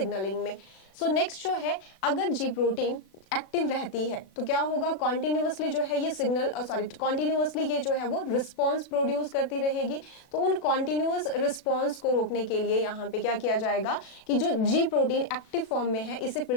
में। सो नेक्स्ट जो है, अगर G प्रोटीन एक्टिव रहती है तो क्या होगा, कॉन्टिन्यूअसली जो है ये सिग्नल कॉन्टिन्यूअसली ये जो है वो रिस्पॉन्स प्रोड्यूस करती रहेगी। तो उन कॉन्टिन्यूअस रिस्पॉन्स को रोकने के लिए यहाँ पे क्या किया जाएगा कि जो G प्रोटीन एक्टिव फॉर्म में है इसे फिर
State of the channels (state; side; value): late; right; 36 ms